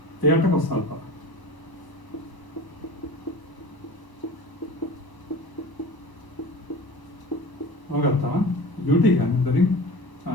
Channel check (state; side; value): late; right; 1.0 ms